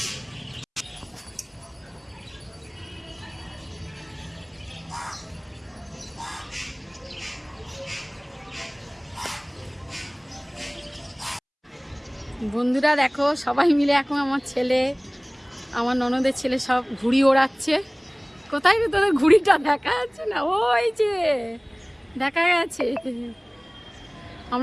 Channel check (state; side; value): identical; both; correlation 1.00